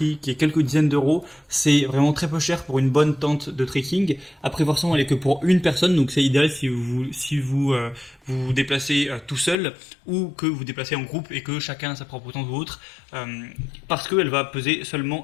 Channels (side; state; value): right; drops out; at 9.6 s